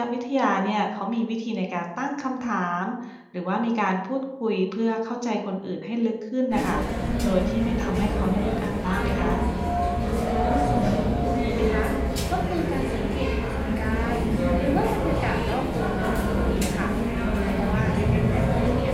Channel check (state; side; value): identical; both; correlation 1.00